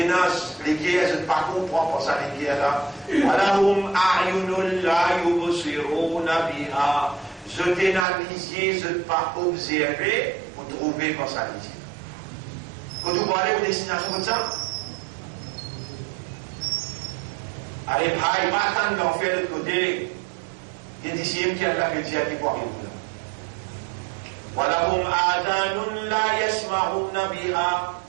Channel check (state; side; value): drops out; left; at 8.1 s